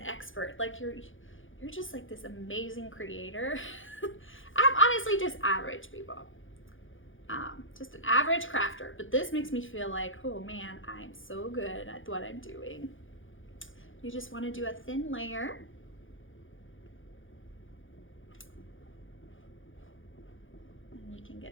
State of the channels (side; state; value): right; late; 0.58 ms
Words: like you're just like this amazing creator. I'm honestly just average, people. Just an average crafter, but this makes me feel like, oh man, I'm so good at what I'm doing. You just want to do a thin layer. And you can